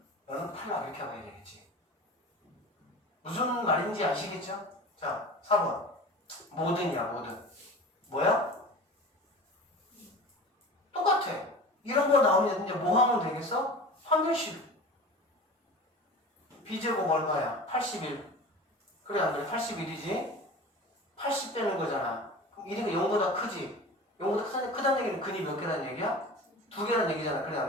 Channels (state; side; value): normal; both; correlation 0.36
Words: 너는 탈락 이렇게 하면 되겠지. 무슨 말인지 아시겠죠? 자 4번 모든이야 모든. 뭐야? 똑같아. 이런 거 나오면 이제 뭐 하면 되겠어? 판별식. b제곱 얼마야? 81. 그래 안 그래? 81이지? 80 되는 거잖아. 그럼 1이가 0보다 크지? 0보다 크다는 얘기는 근이 몇 개라는 얘기야? 2개라는 얘기잖아. 그래